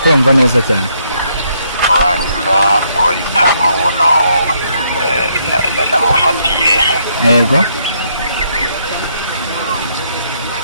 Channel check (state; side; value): inverted; both; correlation -0.72